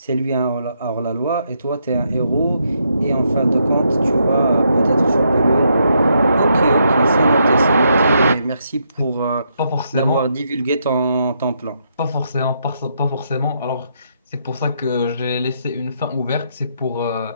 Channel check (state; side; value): inverted; both; correlation -0.77